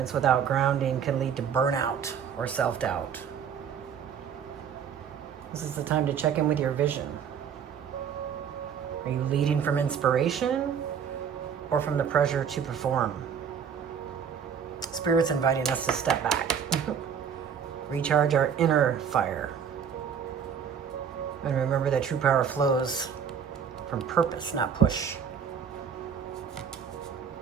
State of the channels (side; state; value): left; quieter; 7.5 dB